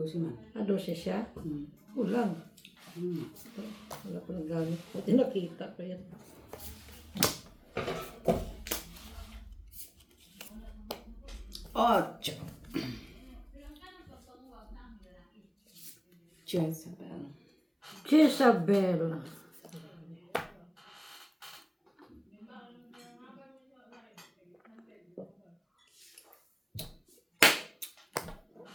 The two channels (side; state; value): both; identical; correlation 1.00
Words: man. Ah, 12 siya? Kulang. Wala ko nang gamit. Buti nakita ko yan. Ocho. Jezebel. Jezabel.